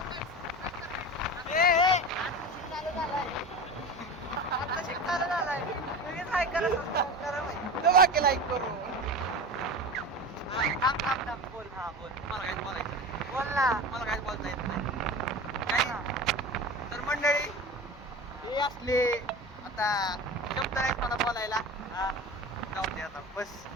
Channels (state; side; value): normal; both; correlation 0.30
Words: लाईक करू. बोल. हा बोल. मला काहीच बोलायचं नाही. बोल ना. मला काहीच बोलता येत नाही. काही तर मंडळी हे असले आता शब्द नाहीत मला बोलायला. हा, जाऊ दे आता बस.